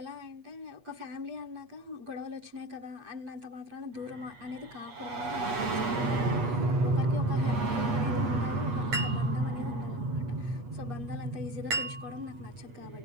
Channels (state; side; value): late; left; 8.3 ms